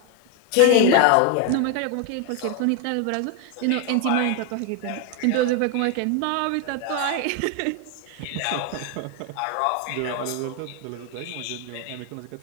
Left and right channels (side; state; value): both; different; correlation 0.01